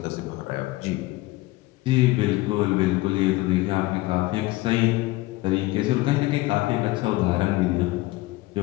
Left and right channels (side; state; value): right; quieter; 19.4 dB